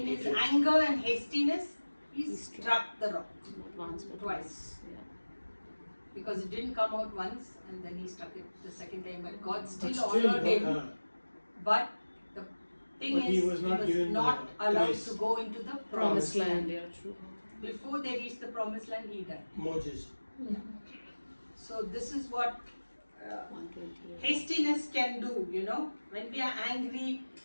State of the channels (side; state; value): both; inverted; correlation -1.00